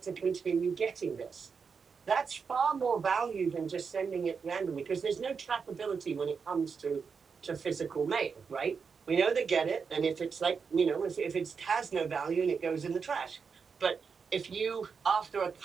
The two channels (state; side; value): quieter; left; 5.7 dB